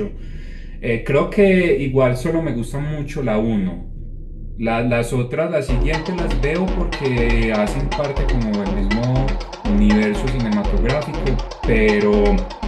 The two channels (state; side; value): identical; both; correlation 1.00